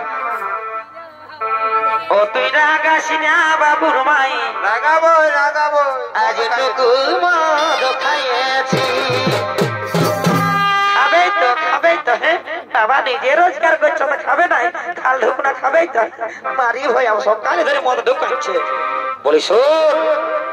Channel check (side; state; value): both; identical; correlation 1.00